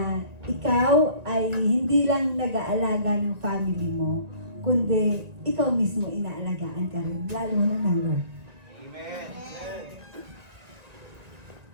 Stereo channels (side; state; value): left; late; 1.9 ms